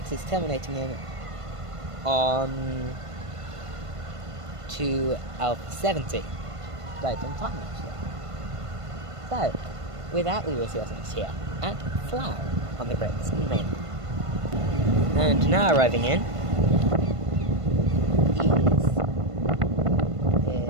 is terminating in on to Alpha 70. Right on time actually. So, with that we will see what's next here at Slough on the Great Western Mainline. And now arriving in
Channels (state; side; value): late; left; 1.5 ms